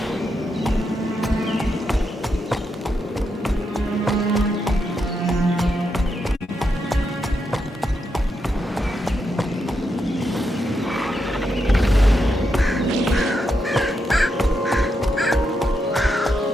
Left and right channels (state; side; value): normal; both; correlation 0.83